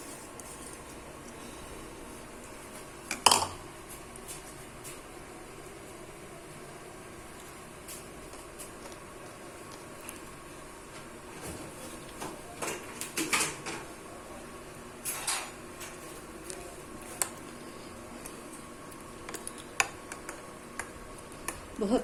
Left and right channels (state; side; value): identical; both; correlation 1.00